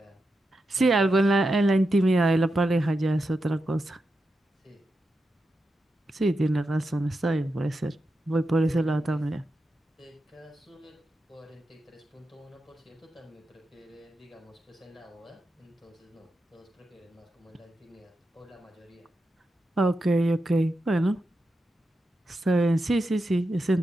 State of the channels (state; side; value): normal; both; correlation 0.88